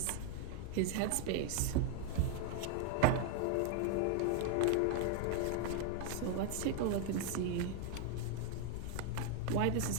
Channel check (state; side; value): different; both; correlation 0.00